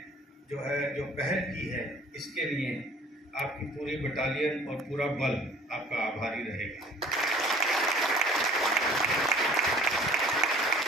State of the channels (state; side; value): normal; both; correlation 0.51